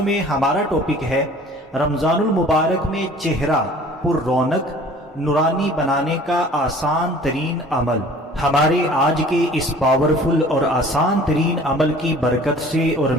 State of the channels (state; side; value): normal; both; correlation 0.49